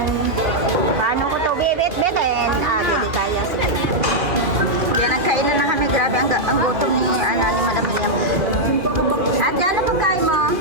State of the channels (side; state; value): left; late; 2.5 ms